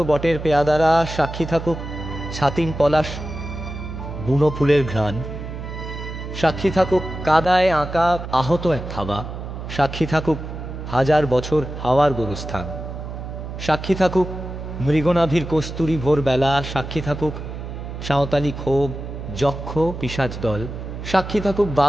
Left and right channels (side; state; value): right; noise; hum, 8 dB below the sound